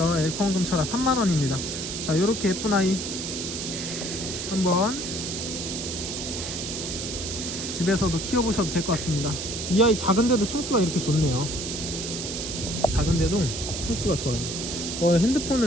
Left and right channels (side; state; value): right; noise; hiss, 5 dB below the sound